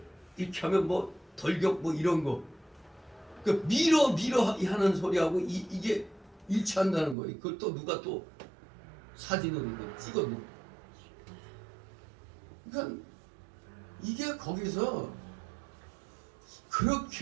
이렇게 하면 뭐 덜격 뭐 이런 거, 그 밀어 하는 소리하고 이게 일치한다는 거예요. 그걸 또 누가 또 사진으로 찍어놓은. 그러니까 이게 거기서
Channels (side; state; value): left; drops out; at 7.2 s